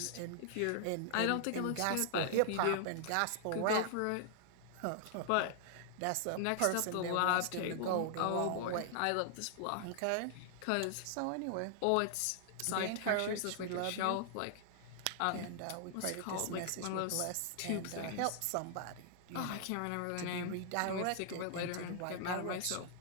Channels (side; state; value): both; different; correlation -0.01